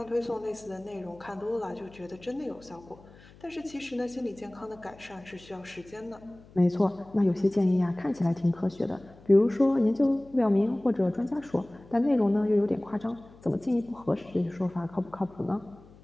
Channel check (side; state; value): left; noise; hum, 23 dB below the sound